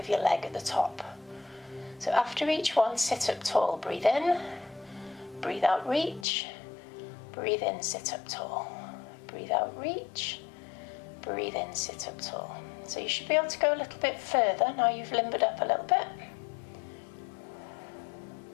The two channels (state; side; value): drops out; right; at 6.2 s